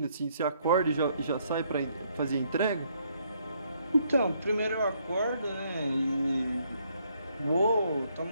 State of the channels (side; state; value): both; inverted; correlation -0.71